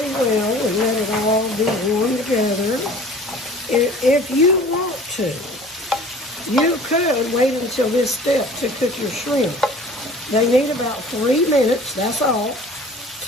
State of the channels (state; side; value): normal; both; correlation 0.46